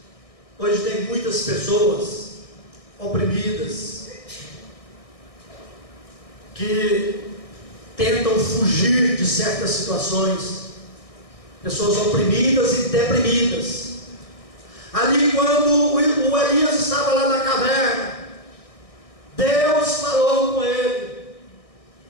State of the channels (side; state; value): right; late; 1.6 ms